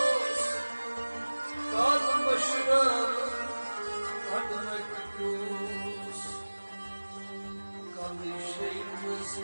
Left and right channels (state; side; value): inverted; both; correlation -1.00